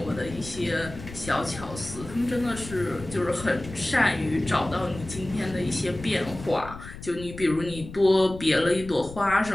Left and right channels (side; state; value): left; noise; rumble, 13 dB below the sound